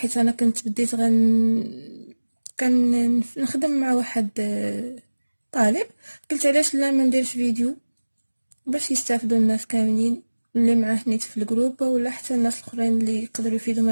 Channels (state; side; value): inverted; both; correlation -1.00